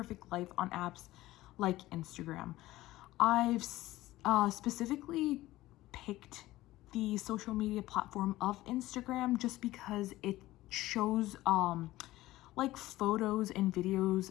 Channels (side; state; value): right; quieter; 16.8 dB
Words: life on apps like Instagram. I've specifically picked the social media platform of Instagram just because it shows like photos and videos